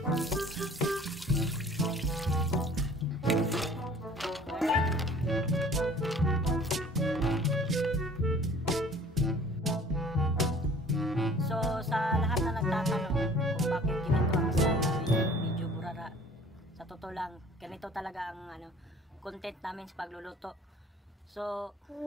So, sa lahat na nagtatanong kung bakit ganito ang style namin, medyo burara. Sa totoo lang, ganito talaga ang content namin sa pagluluto. So,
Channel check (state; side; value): normal; both; correlation 0.51